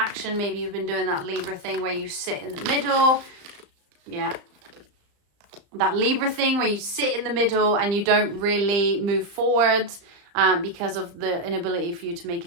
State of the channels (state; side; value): late; left; 35 ms